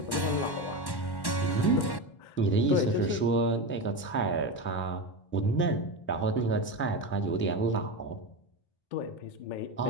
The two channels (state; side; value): late; right; 1.1 ms